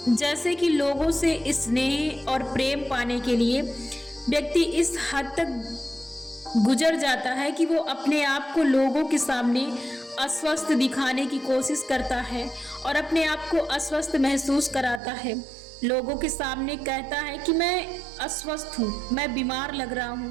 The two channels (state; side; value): drops out; left; at 15.0 s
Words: जैसे कि लोगों से स्नेह और प्रेम पाने के लिए व्यक्ति इस हद तक गुजर जाता है कि वो अपने आप को लोगों के सामने अस्वस्थ दिखाने की कोशिश करता है और अपने आप को अस्वस्थ महसूस कराता है। लोगों के सामने कहता है कि मैं अस्वस्थ हूँ, मैं बीमार लग रहा